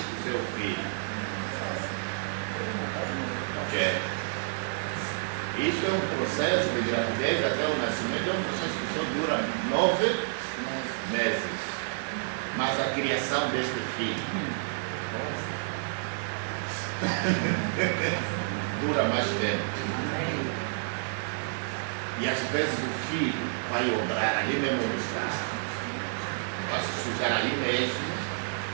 seu filho. Ok? Isso é um processo de gravidez até o nascimento, é um processo que só dura 9 meses. Mas a criação deste filho dura mais tempo. E às vezes o filho vai obrar ali mesmo no estado, vai se sujar ali mesmo.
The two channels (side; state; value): left; silent; digital silence